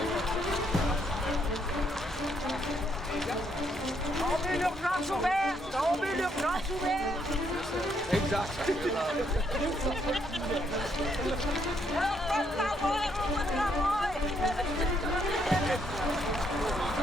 l'urgence ouverte! Tombez l'urgence ouverte! Exact. Alors, pas de travail, pas de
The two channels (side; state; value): both; normal; correlation 0.73